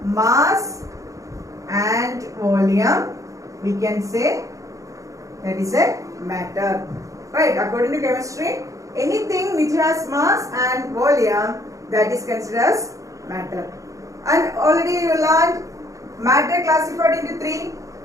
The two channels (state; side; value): late; left; 0.16 ms